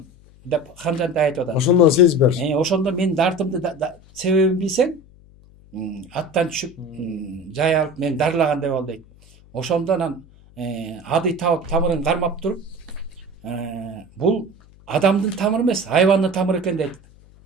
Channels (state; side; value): noise; left; hum, 25 dB below the sound